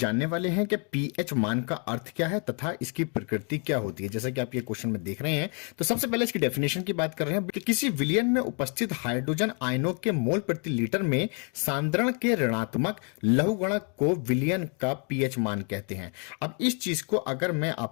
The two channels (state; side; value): quieter; right; 38.5 dB